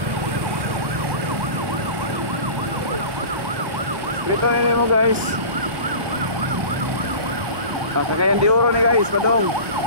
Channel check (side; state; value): left; late; 1.2 ms